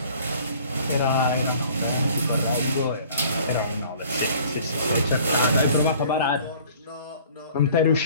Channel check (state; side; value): inverted; both; correlation -0.52